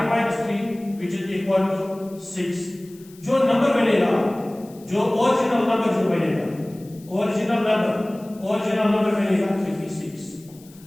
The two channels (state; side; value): noise; left; hiss, 25 dB below the sound